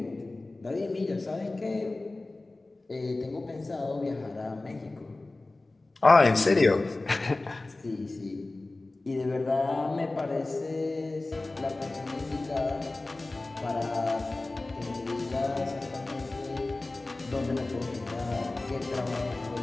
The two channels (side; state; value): right; quieter; 3.1 dB